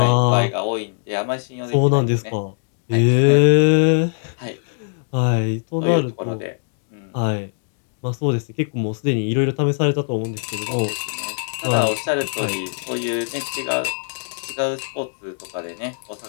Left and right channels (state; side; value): silent; right; digital silence